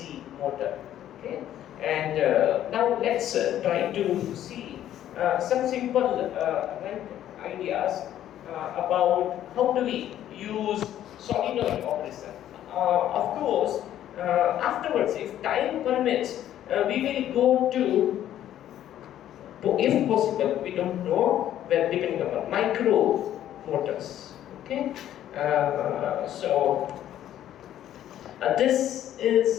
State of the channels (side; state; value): right; quieter; 11.7 dB